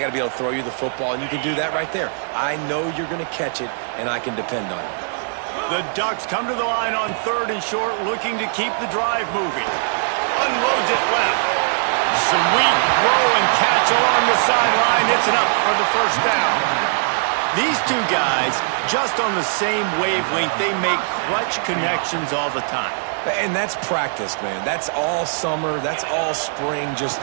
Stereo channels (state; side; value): silent; left; 65 dB below the other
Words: to be able to throw you the football, and you can do that right there. I know you're going to catch it, and I can depend on you. The Ducks come to the line on 3rd and short, looking to keep the drive moving. Unloads it left. Sweet throw and catch along the sideline. It's enough for the first down. These two guys, just on the same wavelength, they make clutch connections all the time. And that's practice, man. That's all summer. That's all spring. Just